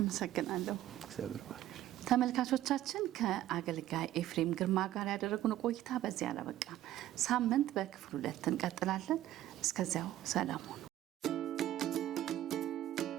እግዚአብሔር ባርክ። ተመልካቾቻችን ከአገልጋይ ኤፍሬም ግርማ ጋር ያደረጉን ቆይታ በዚያ አላበቃም። ሳምንት በክፍል 2 እንቀጥላለን። እስከዚያው ሰላም ሁኑ።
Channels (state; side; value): quieter; left; 13.5 dB